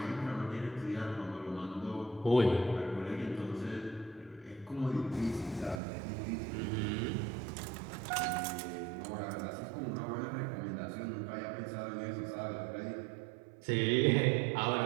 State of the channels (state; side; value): drops out; left; at 5.8 s